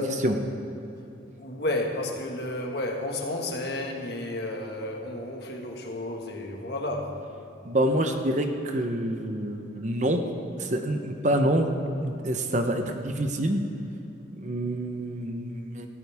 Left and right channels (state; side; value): normal; both; correlation 0.45